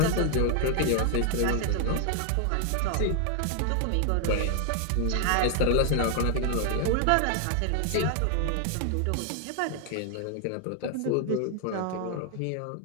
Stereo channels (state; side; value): different; both; correlation 0.00